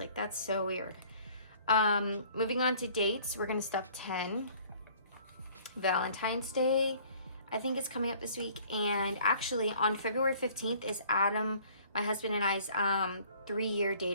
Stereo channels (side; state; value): both; inverted; correlation -0.55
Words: that's so weird. Moving on to dates, we're gonna stuff 10. Valentine's Day, I think, is coming up this week. And actually on February 15th is Adam, my husband, and I's 3-year